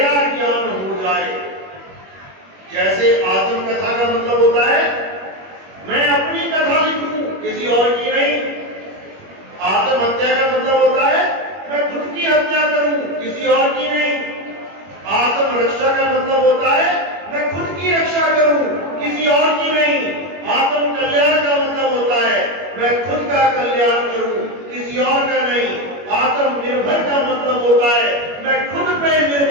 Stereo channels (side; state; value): left; late; 21 ms